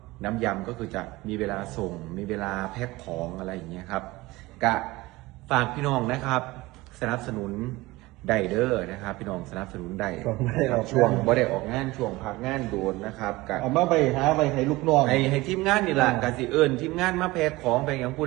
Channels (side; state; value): left; quieter; 20.4 dB